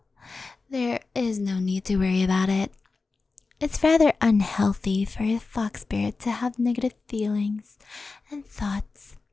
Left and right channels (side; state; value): right; quieter; 4.0 dB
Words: there is no need to worry about it. It's rather unhealthy for a fox spirit to have negative feelings and thoughts.